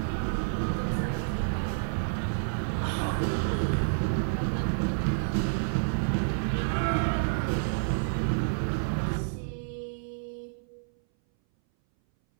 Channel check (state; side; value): silent; left; 58 dB below the other